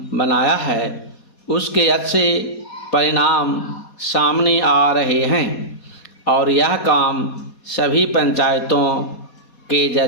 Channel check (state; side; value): late; right; 4.2 ms